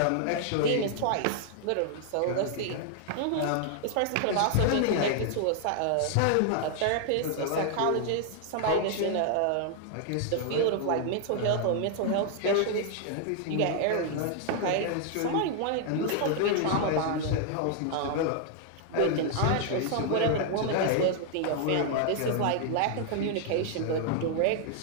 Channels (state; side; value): different; both; correlation 0.00